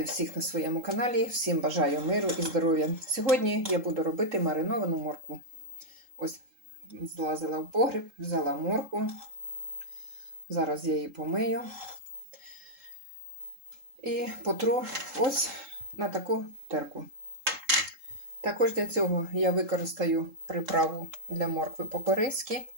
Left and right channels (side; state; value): left; late; 3.7 ms